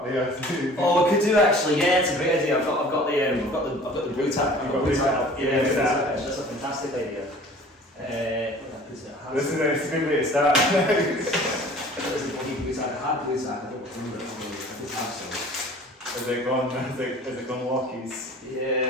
there. Oh, we could do actually. Yeah, it's a great idea. I've got the blue tack. You've got blue tack. Yeah, that's a fantastic idea. This is a good way to start. There's a bloody blue tack. I had blue tack. I don't remember it. I did have some. Is it gone walkies?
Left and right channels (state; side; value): normal; both; correlation 0.47